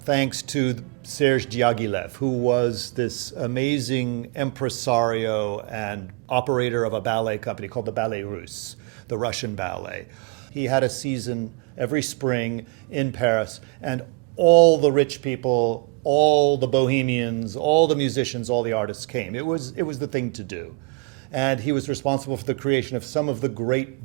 thanks to Sergei Diaghilev, who was this amazing impresario and operator of a ballet company called the Ballet Russes, the Russian ballet. He had a season every spring in Paris, and all the rich people, all the bohemians, all the musicians, all the artists came. It was the thing to do. And he was responsible for the creation of some of the great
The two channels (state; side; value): quieter; left; 28.1 dB